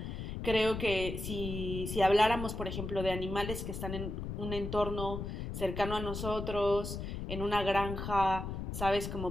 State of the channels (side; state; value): left; noise; rumble, 5 dB below the sound